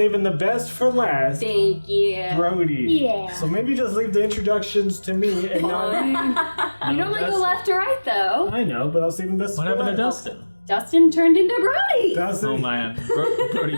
the best for last. Thank you. Brody. Yeah. So maybe just leave the introductions to me and not... You normally go left to right though. I know, but I'll save the best What for happened to last. Dustin? Dustin turned into Brody. Dustin. Oh man,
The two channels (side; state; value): both; inverted; correlation -1.00